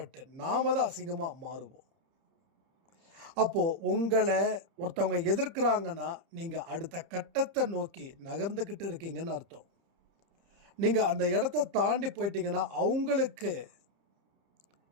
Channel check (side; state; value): left; late; 30 ms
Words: நாம தான் அசிங்கமாக மாறுவோம். அப்போது உங்களை ஒருத்தவங்க எதிர்க்கிறாங்கன்னா நீங்கள் அடுத்த கட்டத்தை நோக்கி நகர்ந்துக்கிட்டு இருக்கீங்கன்னு அர்த்தம். நீங்கள் அந்த இடத்த தாண்டி போயிட்டீங்கன்னா அவங்களுக்கு